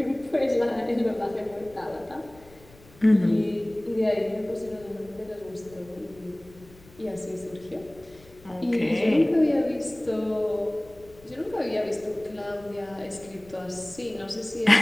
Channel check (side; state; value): left; noise; rumble, 24 dB below the sound